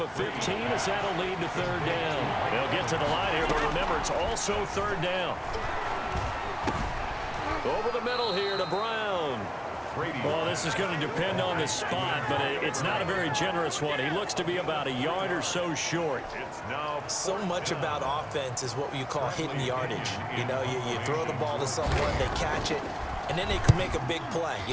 of 15 as that'll lead to 3rd down. They'll get to the line here, but remember, it's also 3rd down. Over the middle here to Brown. Well, this is going to depend on the spot, but it's not a very generous one. He looks to be about a yard or so short. So much about offense is what you call hidden yardage. You know, you throw the ball to someone, they catch it, and then they can make a big play.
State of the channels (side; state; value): both; identical; correlation 1.00